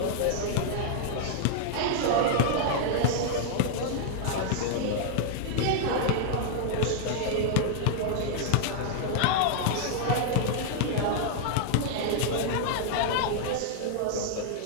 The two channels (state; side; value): different; both; correlation -0.01